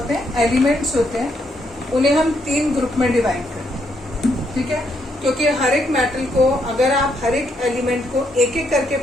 हैं एलिमेंट्स होते हैं, उन्हें हम 3 ग्रुप में डिवाइड करते हैं। ठीक है, क्योंकि हर एक मेटल को अगर आप हर एक एलिमेंट को एक एक करके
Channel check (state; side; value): normal; both; correlation 0.75